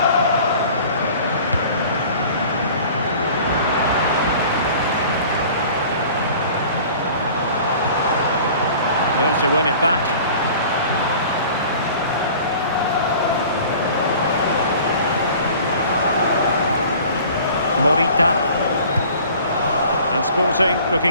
There to win it back. Morita. And Sporting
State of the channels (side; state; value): both; inverted; correlation -0.46